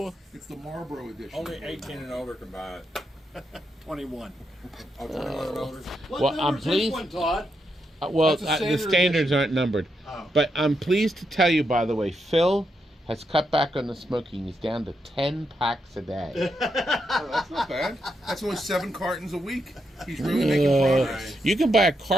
It's the Marlboro edition. Only 18 and older can buy it. 21. Oh, 21 and older? What Well, number I'm is this pleased- one, Todd? well, That's a the standard standards aren't numbered. Oh. But I'm pleased to tell you, by the way, Phil has cut back on the smoking. He's down to 10 packs a day. Oh, that's not bad. That's only 7 cartons a week. He's really making progress. You can buy a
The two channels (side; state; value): both; normal; correlation 0.82